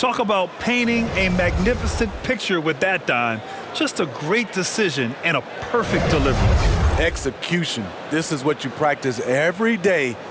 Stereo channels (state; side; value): identical; both; correlation 1.00